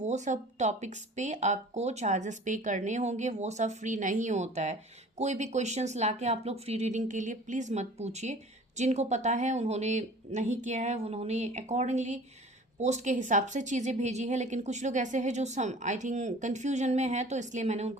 सब टॉपिक्स पे आपको चार्जेस पे करने होंगे। वो सब फ्री नहीं होता है। कोई भी क्वेश्चंस लाके आप लोग फ्री रीडिंग के लिए प्लीज़ मत पूछिए। जिनको पता है उन्होंने नहीं किया है, उन्होंने अकॉर्डिंगली पोस्ट के हिसाब से चीज़ें भेजी है। लेकिन कुछ लोग ऐसे हैं जो सम आई थिंक कन्फ्यूजन में है, तो इसलिए मैंने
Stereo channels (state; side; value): normal; both; correlation 0.45